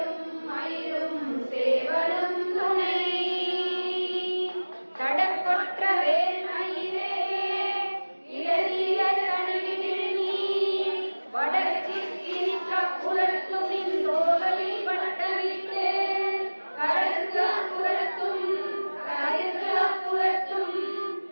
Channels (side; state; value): both; inverted; correlation -1.00